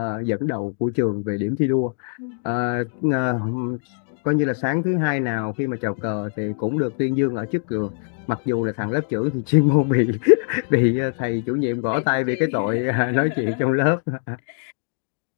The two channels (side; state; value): right; silent; digital silence